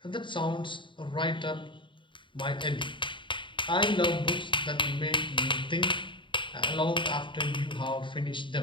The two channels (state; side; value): late; right; 0.24 ms